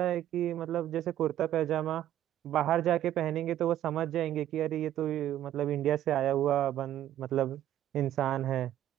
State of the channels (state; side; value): quieter; left; 12.2 dB